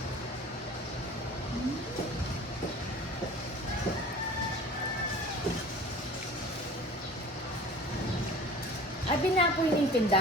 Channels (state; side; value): normal; both; correlation 0.42